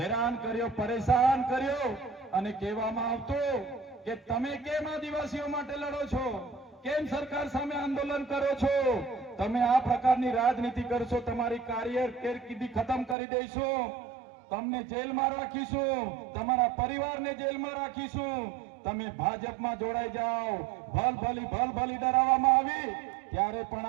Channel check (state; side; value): drops out; left; at 13.2 s